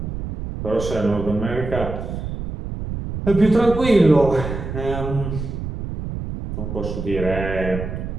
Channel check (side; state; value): right; noise; rumble, 6 dB below the sound